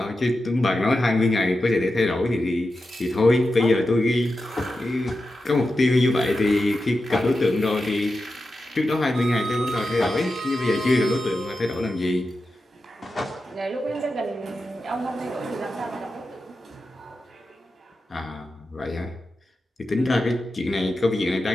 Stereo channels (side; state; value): both; normal; correlation 0.90